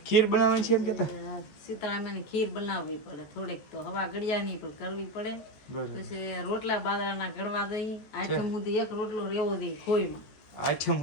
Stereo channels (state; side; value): late; right; 14 ms